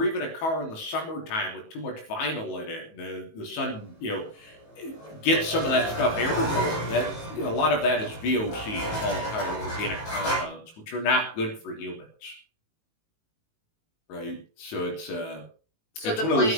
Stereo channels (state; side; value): late; right; 18 ms